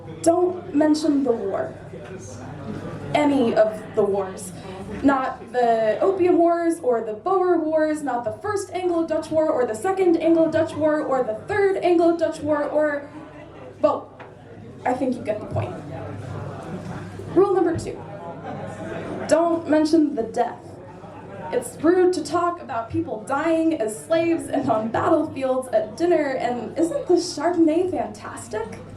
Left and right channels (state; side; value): identical; both; correlation 1.00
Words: Don't mention the war. Any of the wars. Not the Opium Wars, or the Boer Wars, not the First Anglo-Dutch War, or the Second Anglo-Dutch War, or the Third Anglo-Dutch War, or... well, I think you get the point. Rule number 2. Don't mention the death. It's rude to talk about people dying as slaves and on battlefields at dinner, and isn't the Chardonnay fantastic?